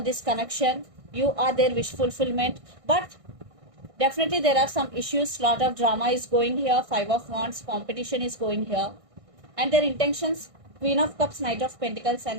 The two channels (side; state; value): left; late; 1.6 ms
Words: connection. You are their wish fulfillment, but definitely there are some issues. Lot of drama is going here. Five of Wands, competition is going here, and their intentions: Queen of Cups, Knight of Pentacles, and